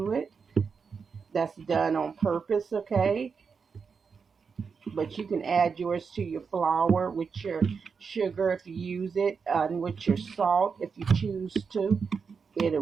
it. That's done on purpose. Okay, but you can add yours to your flour with your sugar if you use it, and with your salt if you choose to. It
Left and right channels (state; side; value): quieter; left; 5.6 dB